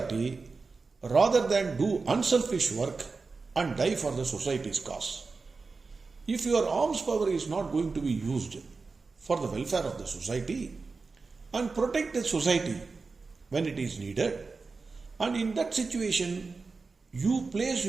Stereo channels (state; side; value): quieter; left; 4.3 dB